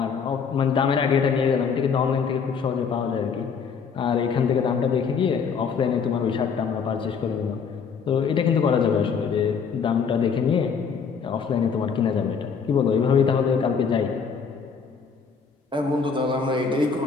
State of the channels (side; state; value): right; quieter; 6.1 dB